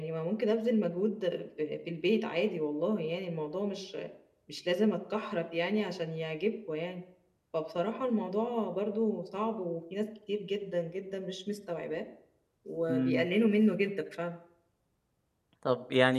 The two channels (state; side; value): identical; both; correlation 1.00